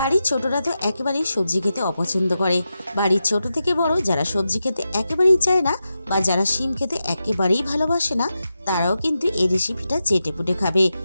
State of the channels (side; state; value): both; inverted; correlation -0.89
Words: ছোটরা তো একেবারেই সবজি খেতে অপছন্দ করে। বাড়ির ছোট থেকে বড় যারা সবজি খেতে একেবারেই চায় না বা যারা শিম খেতে একেবারেই ভালোবাসে না, তারাও কিন্তু এই রেসিপিটা চেটেপুটে খাবে।